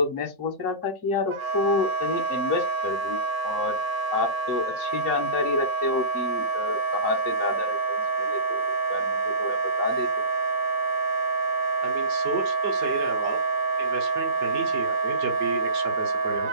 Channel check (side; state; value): left; late; 5.0 ms